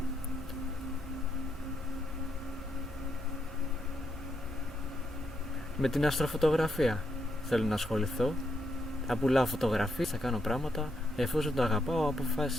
Με την αστροφωτογραφία θέλω να ασχοληθώ. Θα πουλάω φωτογραφίες, θα κάνω πράγματα. Εφόσον το αγαπάω,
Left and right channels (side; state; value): both; normal; correlation 0.79